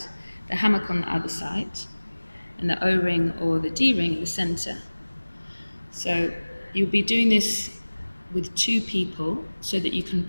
the hammock on the other side, and the O-ring or the D-ring in the center. So you'll be doing this with two people so that you can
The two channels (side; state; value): both; inverted; correlation -1.00